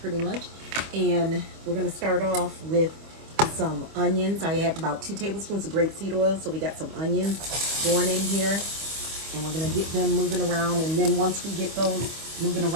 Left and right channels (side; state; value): left; late; 25 ms